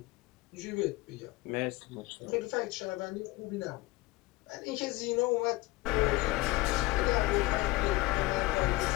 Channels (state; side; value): quieter; right; 21.0 dB